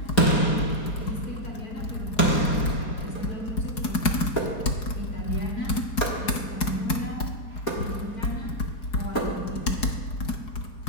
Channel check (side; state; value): right; late; 4.8 ms